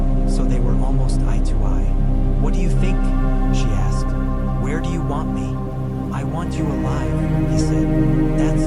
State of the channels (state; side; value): identical; both; correlation 1.00